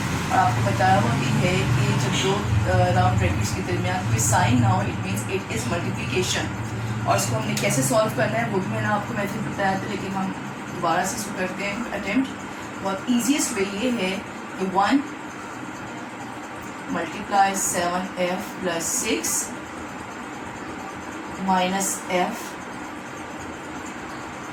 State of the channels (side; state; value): both; identical; correlation 1.00